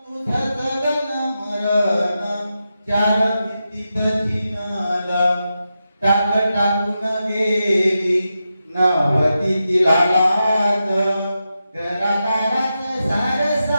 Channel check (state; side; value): inverted; both; correlation -0.89